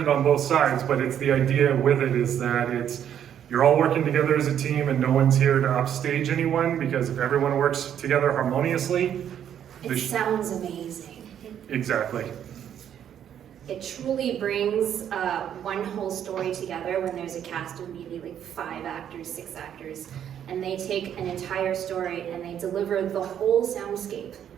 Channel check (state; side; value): quieter; left; 9.6 dB